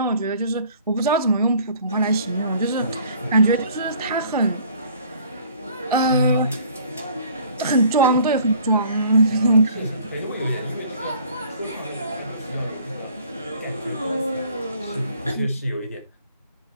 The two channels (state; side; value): inverted; both; correlation -0.54